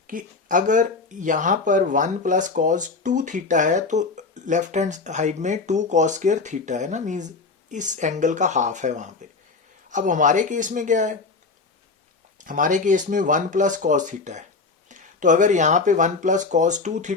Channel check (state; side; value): quieter; right; 4.1 dB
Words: कि अगर यहाँ पर 1 प्लस cos 2 थीटा है तो लेफ्ट हैंड साइड में 2 cos स्क्वायर थीटा है ना, मीन्स इस एंगल का हाफ है वहाँ पे। अब हमारे केस में क्या है, हमारे केस में 1 प्लस cos थीटा है, तो अगर यहाँ पे 1 प्लस cos 2